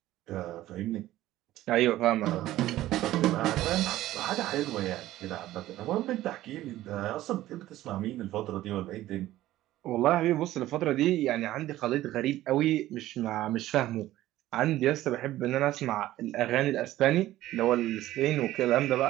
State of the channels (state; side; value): quieter; left; 15.0 dB